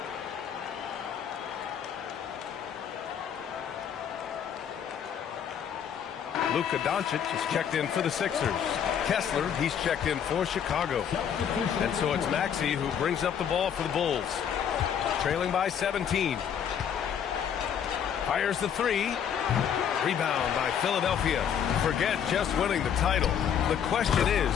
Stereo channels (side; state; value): right; quieter; 8.4 dB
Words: Luka Doncic is checked in for the Sixers. Kessler, he's checked in for Chicago. And so it's Maxey who brings up the ball for the Bulls. Trailing by 17. Fires the three. Rebound by Philadelphia. Forget just winning the title. The question is,